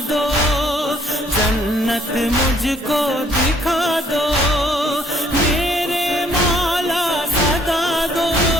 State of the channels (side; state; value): both; normal; correlation 0.64